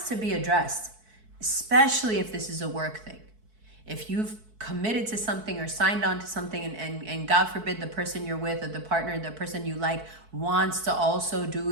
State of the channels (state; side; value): late; left; 4.6 ms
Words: to be addressed. Especially if this is a work thing. If you've committed to something or signed on to something, and God forbid the person you're with or the partner, the person you like wants to also